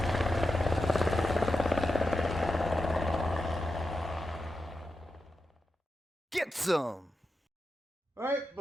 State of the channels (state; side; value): normal; both; correlation 0.89